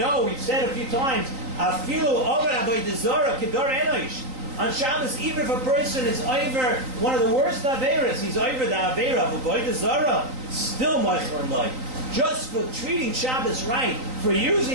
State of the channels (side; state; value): left; late; 3.9 ms